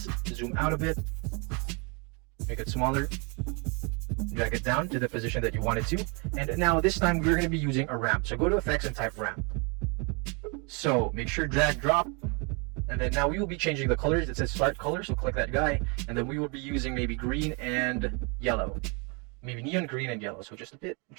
zoom out a bit, make it smaller, drag it down to the position that you want it to. And now this time we're going to be using a ramp. So go to Effects and type ramp. So make sure drag, drop. And then now we will be changing the colors. It says start color, so click that guy. And then we will be using maybe green and yellow. Maybe neon green and yellow. So just a bit,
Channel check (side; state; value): left; quieter; 33.1 dB